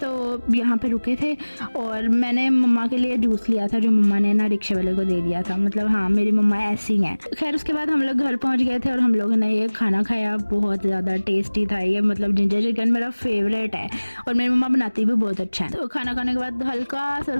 यहाँ पे रुके थे और मैंने मम्मा के लिए जूस लिया था जो मम्मा ने ना रिक्शे वाले को दे दिया था। मतलब हाँ, मेरी मम्मा ऐसी हैं। खैर उसके बाद हम लोग घर पहुंच गए थे और हम लोगों ने ये खाना खाया, बहुत ज़्यादा टेस्टी था ये। मतलब जिंजर चिकन मेरा फेवरेट है और मेरी मम्मा बनाती भी बहुत अच्छा है। तो खाना खाने के बाद हल्का सा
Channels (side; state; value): both; inverted; correlation -1.00